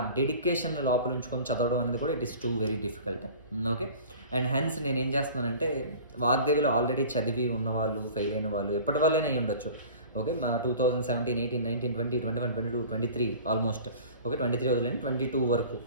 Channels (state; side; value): inverted; both; correlation -0.41